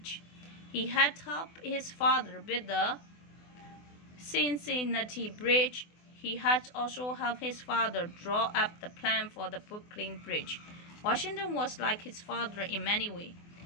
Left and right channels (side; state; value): right; late; 24 ms